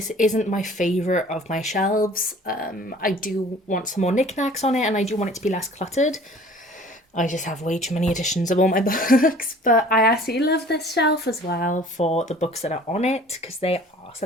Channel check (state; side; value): normal; both; correlation 0.49